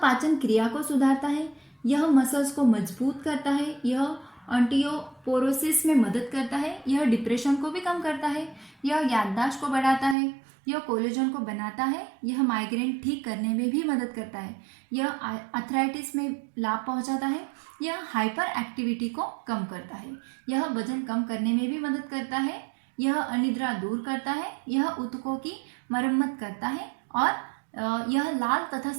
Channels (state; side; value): drops out; left; at 10.2 s